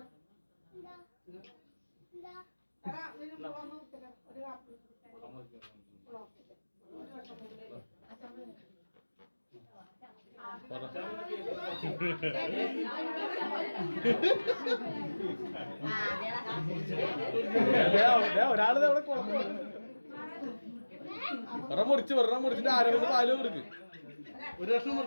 ഒരാള് ഒരെണ്ണം മുറിച്ചിട്ട് ആരവിന് പാല് കൊടുക്ക്. ഒരു കഷ്ണം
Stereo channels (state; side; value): inverted; both; correlation -1.00